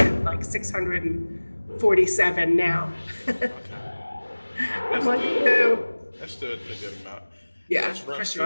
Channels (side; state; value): both; inverted; correlation -1.00